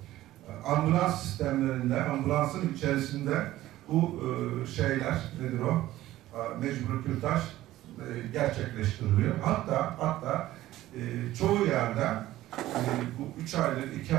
ambulans sistemlerinde, ambulansın içerisinde bu şeyler, nedir o? Mecbur kürtaj gerçekleştiriliyor. Hatta çoğu yerde bu 3 aylık, 2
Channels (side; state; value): left; quieter; 15.2 dB